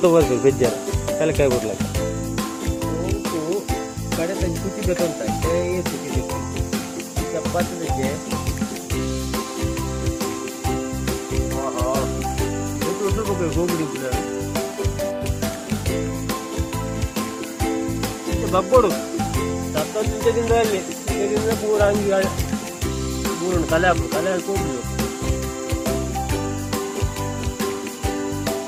ಬರ್ತದೆ ಬೆಜ್ಜಾರ ತಲೆಕಾಯಿ ಬಿಡ್ಲಕ್ಕೆ ಗೋಂಕು ಕಡೆ ತಂದು ಕುಚಿಬೇಕು ಅಂತ ಕುಚಿಬೇಕು ಚಪಾತಿ ಬೆಜ್ಜೆ ಗೋಂಗುಡಿ ಬಗ್ಗೋಡು ಸತ್ತದಿಂದ ಅಲ್ಲಿ ಪೂರ ಹಂಗಿ ಪೂರ ಕಲೆ ಹಾಕು ಕಲೆ ಹಾಕಿ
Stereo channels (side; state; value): both; identical; correlation 1.00